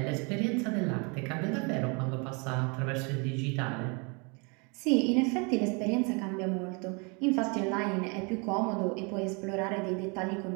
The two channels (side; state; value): left; quieter; 31.9 dB